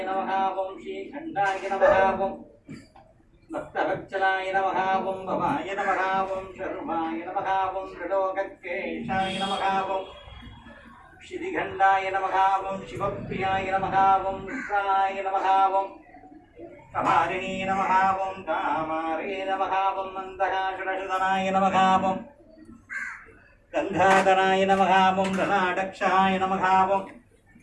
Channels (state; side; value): identical; both; correlation 1.00